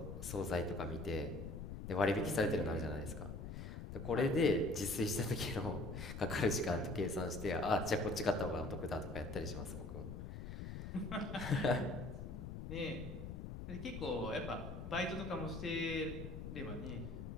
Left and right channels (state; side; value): noise; left; rumble, 7 dB below the sound